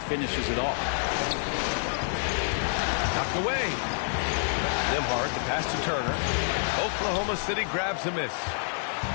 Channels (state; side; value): silent; right; digital silence